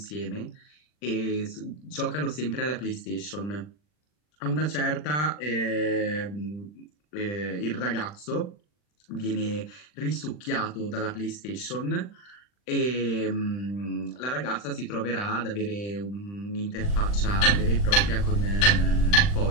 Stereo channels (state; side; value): late; right; 40 ms